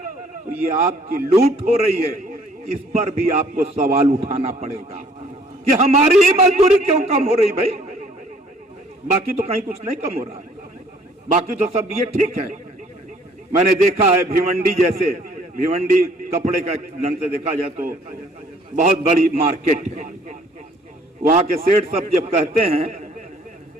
तो ये आपकी लूट हो रही है। इस पर भी आपको सवाल उठाना पड़ेगा कि हमारी ही मजदूरी क्यों कम हो रही? भाई बाकी तो कहीं कुछ नहीं कम हो रहा है, बाकी तो सब ये ठीक है। मैंने देखा है भिवंडी जैसे, भिवंडी कपड़े का ढंग से देखा जाए तो बहुत बड़ी मार्केट है। वहां के सेठ सब जब कहते हैं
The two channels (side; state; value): both; normal; correlation 0.59